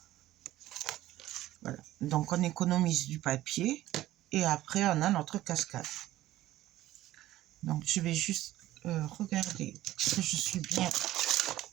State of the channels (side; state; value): left; quieter; 15.1 dB